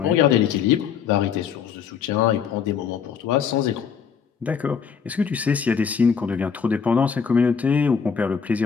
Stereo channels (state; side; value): quieter; right; 6.8 dB